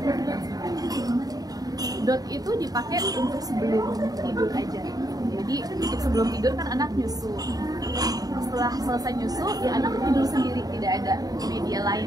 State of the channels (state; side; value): late; left; 0.18 ms